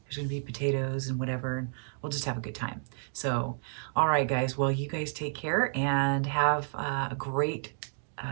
there's gonna be potatoes and whatever, and we'll just have a good time. So, all right, guys, well, you guys take care and have a great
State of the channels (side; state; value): left; silent; digital silence